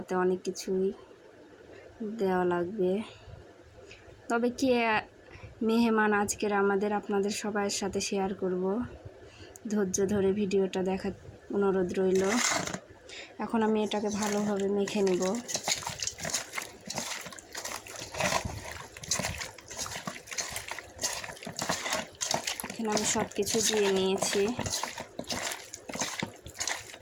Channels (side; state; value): both; identical; correlation 1.00